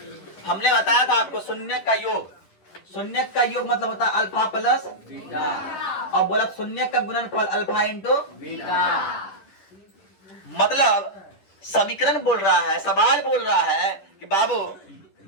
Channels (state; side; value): late; right; 11 ms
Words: हमने बताया था आपको शून्य का योग मतलब होता है अल्फा प्लस बीटा, और बोला शून्य का गुणनफल अल्फा इंटू बीटा। मतलब समीकरण बोल रहा है, सवाल बोल रहा है कि बाबू